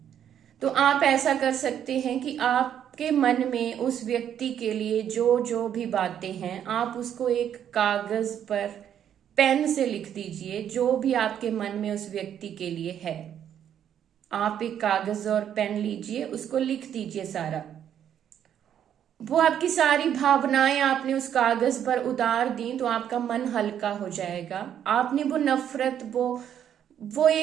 तो आप ऐसा कर सकते हैं कि आपके मन में उस व्यक्ति के लिए जो जो भी बातें हैं आप उसको एक कागज पर पेन से लिख दीजिए। जो भी आपके मन में उस व्यक्ति के लिए है, आप एक कागज और पेन लीजिए, उसको लिख दीजिए सारा। वो आपकी सारी भावनाएं आपने उस कागज पर उतार दी तो आपका मन हल्का हो जाएगा। आपने वो नफरत, वो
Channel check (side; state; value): left; quieter; 9.6 dB